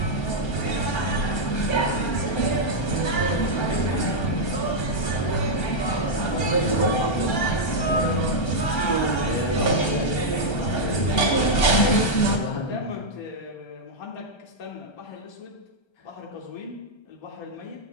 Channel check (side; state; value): right; late; 1.3 ms